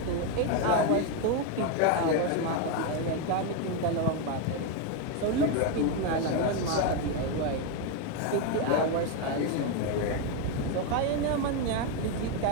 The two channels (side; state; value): both; different; correlation 0.02